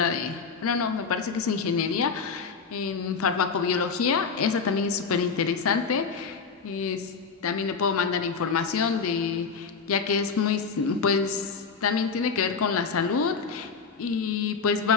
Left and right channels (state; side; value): quieter; right; 5.4 dB